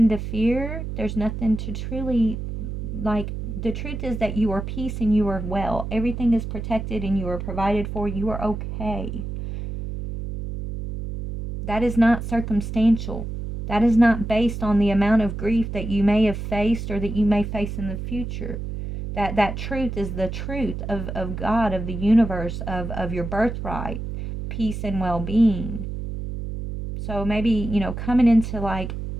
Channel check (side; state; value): right; noise; hum, 6 dB below the sound